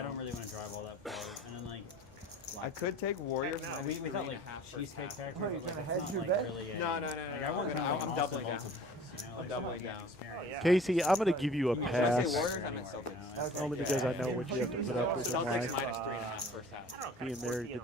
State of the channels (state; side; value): normal; both; correlation 0.46